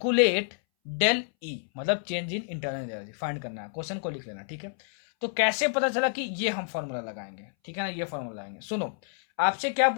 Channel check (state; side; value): silent; right; 59 dB below the other